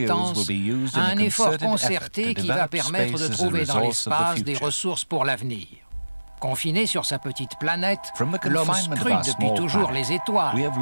à un effort concerté qui va permettre de trouver dans l'espace des ressources pour l'avenir. Confiné sur sa petite planète, l'homme scrute depuis toujours les étoiles.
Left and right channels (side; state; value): both; inverted; correlation -1.00